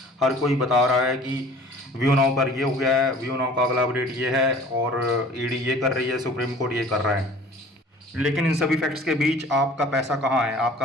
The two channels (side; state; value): both; normal; correlation 0.47